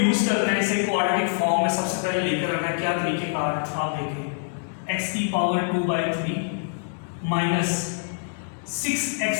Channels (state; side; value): silent; right; digital silence